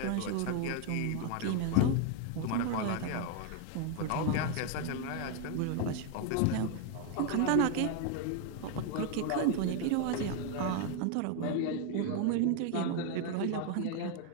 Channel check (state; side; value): different; both; correlation 0.01